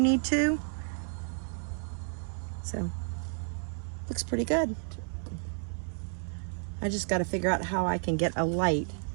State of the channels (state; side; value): silent; left; 57 dB below the other